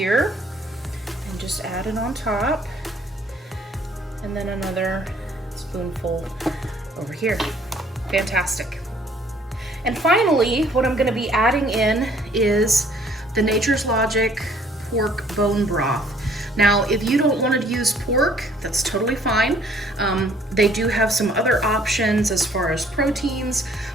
and just add it on top, and then another spoonful over here. Fantastic. And finally, what I'm gonna be adding in is the Nature's Logic pork bone broth. Now, if you don't want to use pork, that's totally fine. They do have some other options as far as proteins,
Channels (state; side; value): normal; both; correlation 0.59